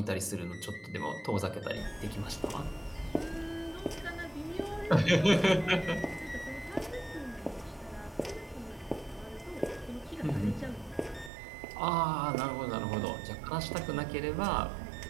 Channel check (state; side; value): drops out; left; at 11.3 s